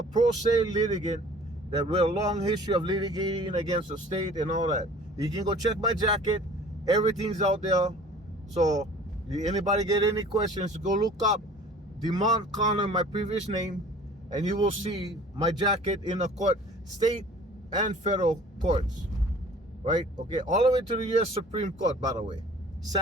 pro se litigant that with a long history of litigating against the state and all that. You can go check my jacket. Everything's out there. So anybody get any questions, go look up Demont Connor, my previous name, and you will see my jacket in the court, state and federal courts, right? Okay, all the way to the U.S. Supreme Court, by the way,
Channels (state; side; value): normal; both; correlation 0.48